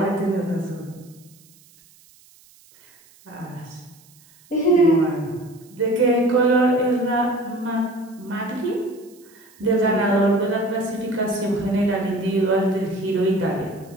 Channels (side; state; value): right; noise; hiss, 28 dB below the sound